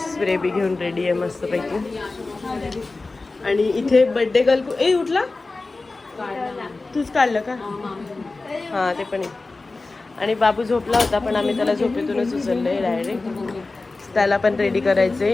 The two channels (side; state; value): right; quieter; 3.5 dB